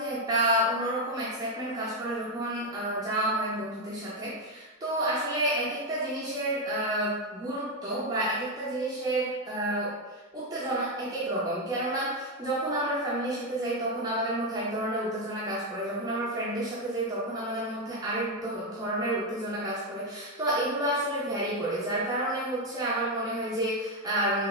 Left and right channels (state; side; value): normal; both; correlation 0.06